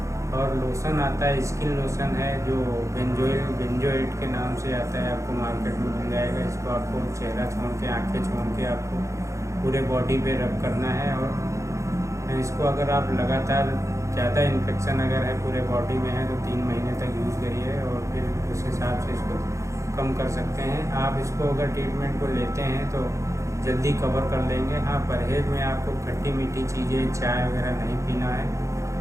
और लोशन आता है, स्किन लोशन है, जो बेंजोएट के नाम से आता है, आपको मार्केट में मिल जाएगा। इसको आपको चेहरा छोड़ के, आँखें छोड़ के आपको पूरे बॉडी पे रब करना है। और इसको अगर आप लगातार ज़्यादा इन्फेक्शन अगर है पूरे बॉडी में है तो 3 महीने तक यूज़ करिए, और फिर उस हिसाब से इसको कम कर सकते हैं। आप इसको अगर ट्रीटमेंट को लेते हैं तो जल्दी कवर कर लेंगे। हाँ, परहेज़ में आपको खट्टी मीठी चीज़ें, चाय वगैरह नहीं पीना है,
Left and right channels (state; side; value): late; left; 0.15 ms